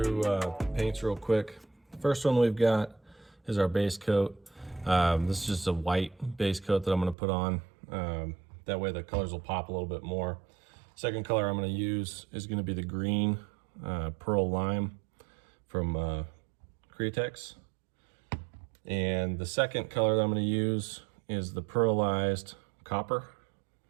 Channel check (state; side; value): drops out; left; at 7.2 s